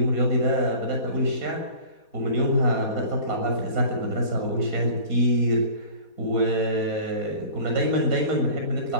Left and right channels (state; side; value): late; right; 4.2 ms